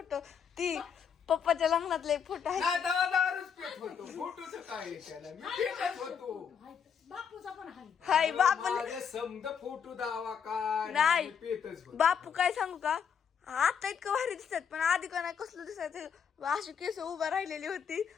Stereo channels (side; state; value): right; quieter; 7.2 dB